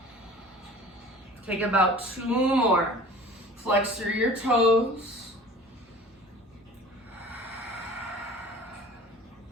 Take about 2 more. Flex through your toes.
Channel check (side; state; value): both; normal; correlation 0.43